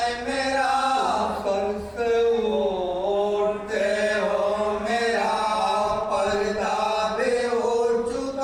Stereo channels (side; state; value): both; identical; correlation 1.00